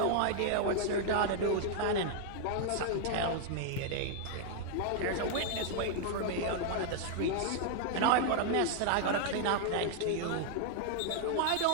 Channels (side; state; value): both; different; correlation 0.00